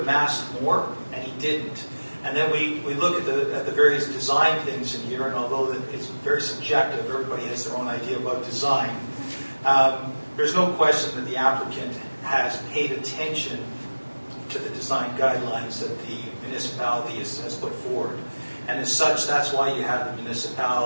massed more, and he didn't. And then we look at the various design things in here, and although it's very subjective, everybody has their own idea about design. There's no question that the applicant has paid attention to the design guidelines that the municipality has put forward. And as such, that's why you have the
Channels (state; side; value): inverted; both; correlation -1.00